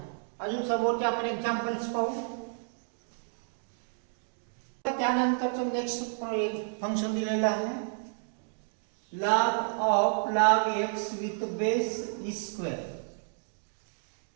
अजून समोरचे आपण एक्झाम्पल्स पाहू. त्यानंतरचं नेक्स्ट फंक्शन दिलेलं आहे log x with base e².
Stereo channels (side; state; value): left; silent; digital silence